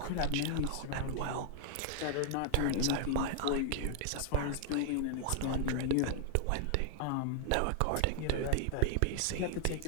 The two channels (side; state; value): both; different; correlation 0.00